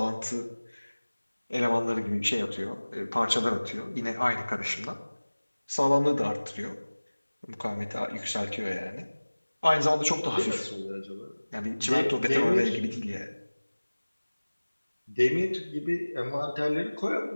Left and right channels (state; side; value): inverted; both; correlation -1.00